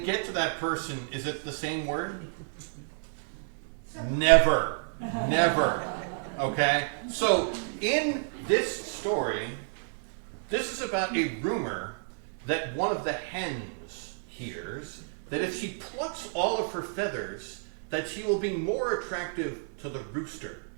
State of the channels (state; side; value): silent; left; digital silence